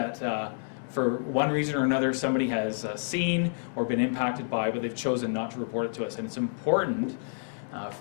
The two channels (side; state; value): right; silent; 59 dB below the other